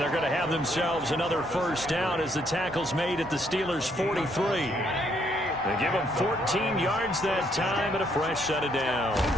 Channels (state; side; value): normal; both; correlation 0.71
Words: they're going to have themselves another first down as the tackle's made at the Steelers' 43. They give them 14 yards that time and a fresh set of downs.